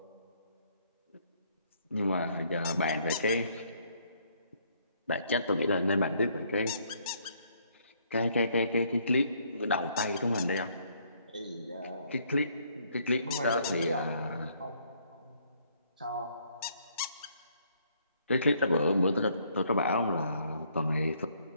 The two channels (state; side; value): inverted; both; correlation -0.67